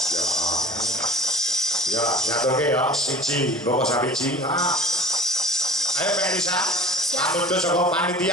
Ya, nyaturke ya siji, mboko sabiji. Ayo Mbak Elisa. Amundur saka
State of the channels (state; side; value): normal; both; correlation 0.43